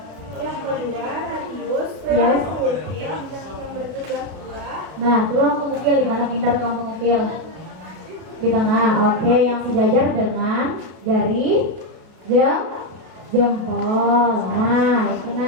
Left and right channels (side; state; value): left; late; 32 ms